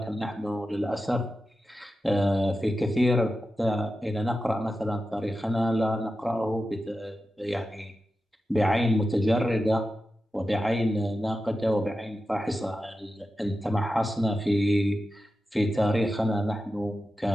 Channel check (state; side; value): normal; both; correlation 0.92